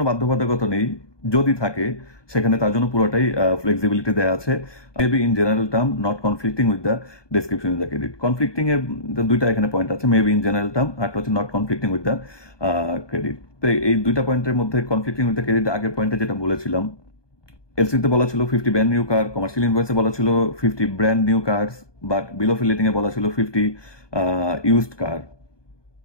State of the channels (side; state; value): right; late; 1.2 ms